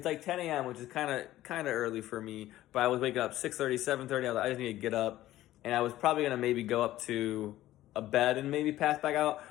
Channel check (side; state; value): right; quieter; 14.8 dB